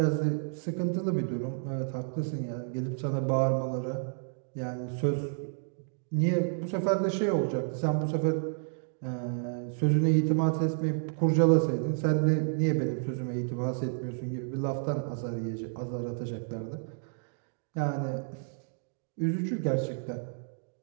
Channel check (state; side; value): silent; left; digital silence